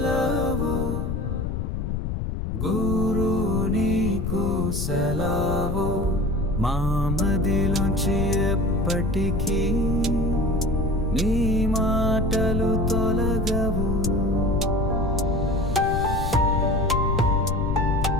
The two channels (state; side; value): noise; left; rumble, 2 dB below the sound